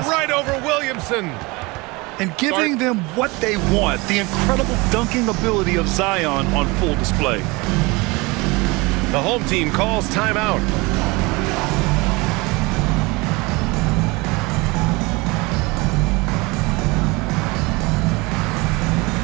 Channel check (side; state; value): left; quieter; 24.8 dB